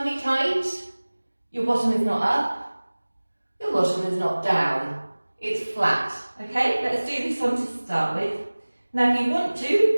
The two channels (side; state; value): both; inverted; correlation -1.00